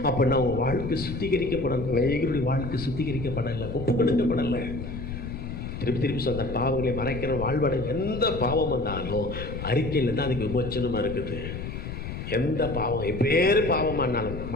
அப்படின்னா உங்கள் வாழ்க்கை சுத்திகரிக்கப்படணும். அநேகருடைய வாழ்க்கை சுத்திகரிக்கப்படலை, ஒப்பு கொடுக்கப்படலை. திருப்பி சொன்ன பாவங்களை மறைக்கிற வாழ்வடை. எந்த பாவம் வந்தாலும் அறிக்கையில் தான் அதுக்கு விமோச்சனமாக இருக்குது. எந்த பாவம் எப்பேறு பாவமானாலும்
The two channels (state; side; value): noise; left; rumble, 7 dB below the sound